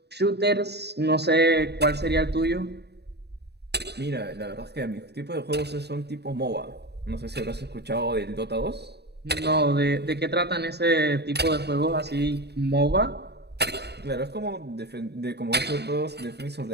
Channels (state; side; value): late; left; 0.48 ms